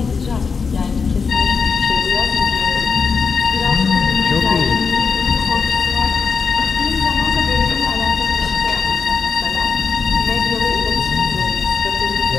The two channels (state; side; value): quieter; right; 5.4 dB